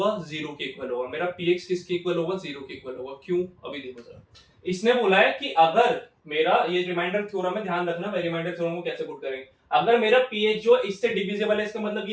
0 के इक्वल होगा। मेरा px किसके इक्वल होगा, 0 के इक्वल होगा। क्यों, अभी देखो जरा। इसने बोला है कि अगर मेरा, ये रिमाइंडर थ्योरम है, ध्यान रखना रिमाइंडर थ्योरम को कैसे पुट करेंगे। अगर मेरा ph जो इससे डिविजिबल है, इसका मतलब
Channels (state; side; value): identical; both; correlation 1.00